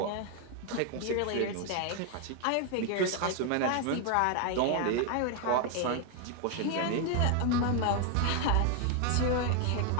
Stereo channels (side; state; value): both; different; correlation 0.01